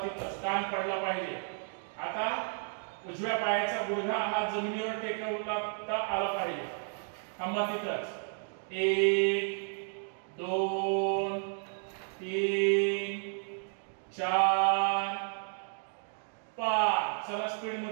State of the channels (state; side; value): silent; left; 56 dB below the other